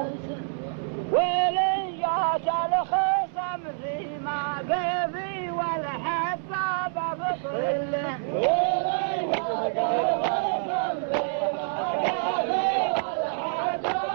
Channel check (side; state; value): left; silent; digital silence